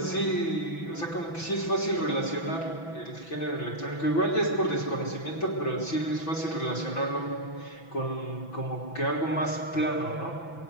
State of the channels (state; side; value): late; right; 6.0 ms